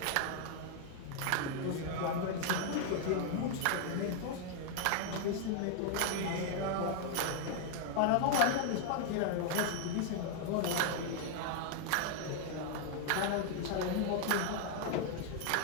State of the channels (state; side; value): different; both; correlation 0.00